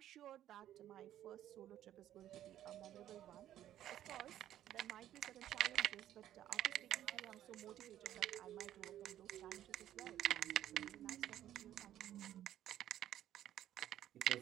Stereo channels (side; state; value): left; quieter; 12.0 dB